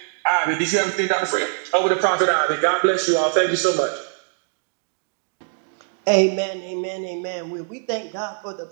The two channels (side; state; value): left; silent; digital silence